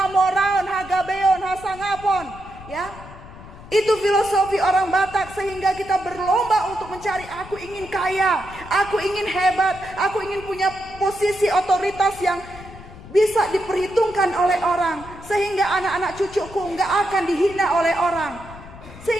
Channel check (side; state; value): left; noise; rumble, 17 dB below the sound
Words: hagabeon, hasangapon, ya. Itu filosofi orang Batak sehingga kita berlomba untuk mencari aku ingin kaya, aku ingin hebat, aku ingin punya posisi otoritas yang bisa diperhitungkan oleh orang. Sehingga anak-anak cucuku nggak akan dihina oleh orang.